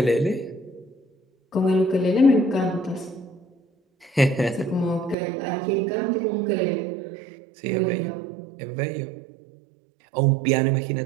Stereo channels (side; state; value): left; drops out; at 5.2 s